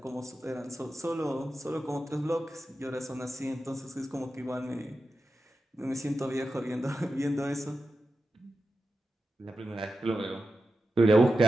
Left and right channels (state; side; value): normal; both; correlation 0.91